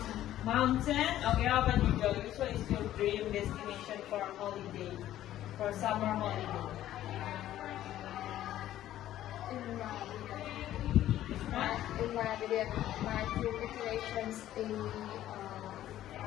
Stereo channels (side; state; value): right; quieter; 13.0 dB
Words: mountain? Okay, how about you, Joey? Which one is your dream destination for a holiday? For summer holiday? in my video, my dream destinations in